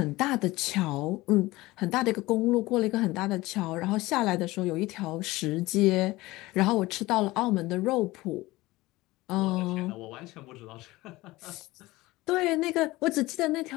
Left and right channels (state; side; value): quieter; right; 19.6 dB